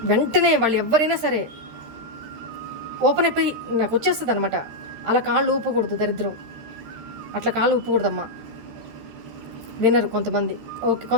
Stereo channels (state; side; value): late; left; 13 ms